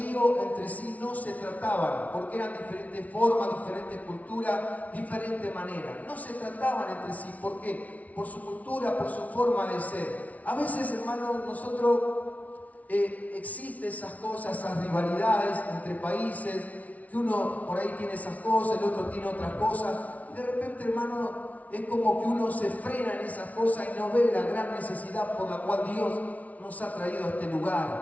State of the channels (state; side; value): late; right; 0.070 ms